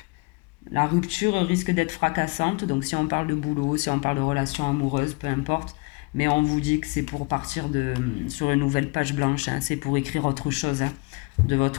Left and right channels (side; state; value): right; quieter; 28.4 dB